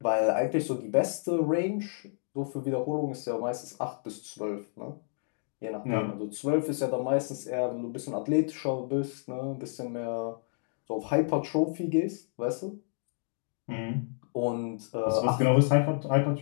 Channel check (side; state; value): right; silent; digital silence